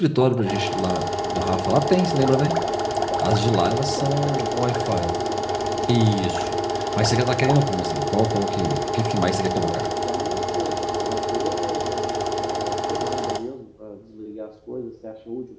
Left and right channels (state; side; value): identical; both; correlation 1.00